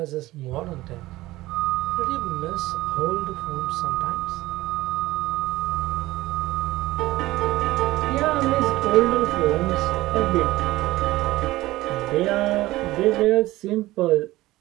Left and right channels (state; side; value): quieter; left; 17.7 dB